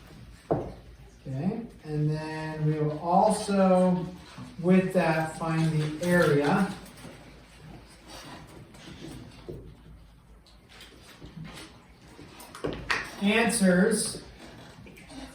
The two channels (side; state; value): both; identical; correlation 1.00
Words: Okay, and then we will also, with that, find the area. Answers